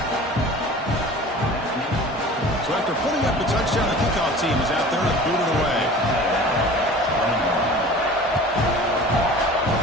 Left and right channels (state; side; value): normal; both; correlation 0.41